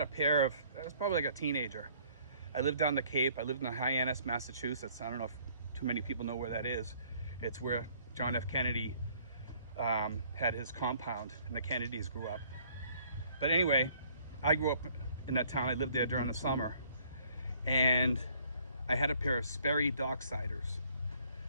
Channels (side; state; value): both; inverted; correlation -0.60